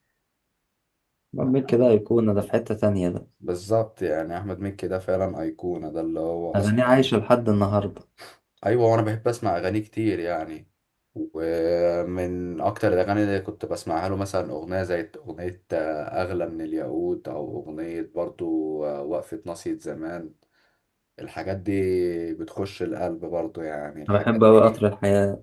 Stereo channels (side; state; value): both; identical; correlation 1.00